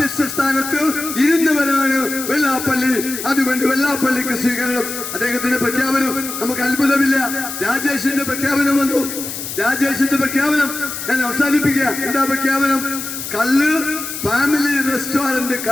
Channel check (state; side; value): noise; left; hiss, 7 dB below the sound